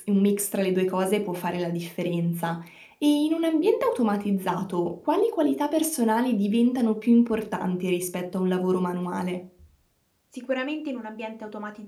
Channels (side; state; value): both; identical; correlation 1.00